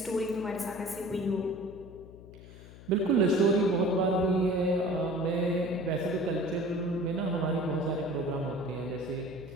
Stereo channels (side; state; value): left; noise; hum, 18 dB below the sound